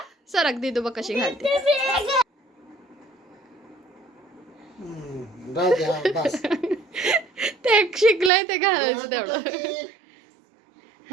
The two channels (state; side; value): drops out; left; at 8.3 s